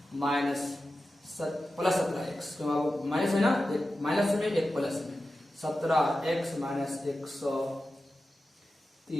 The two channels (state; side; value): normal; both; correlation 0.93